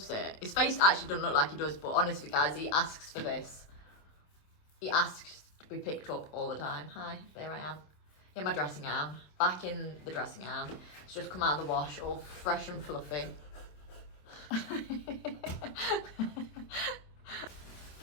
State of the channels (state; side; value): late; right; 27 ms